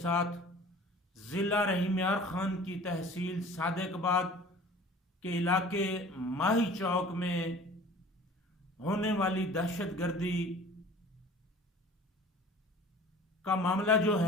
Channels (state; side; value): normal; both; correlation 0.45